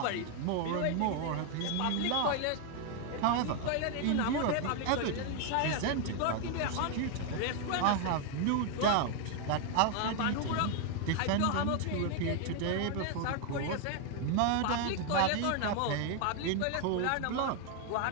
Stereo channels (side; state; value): both; different; correlation 0.00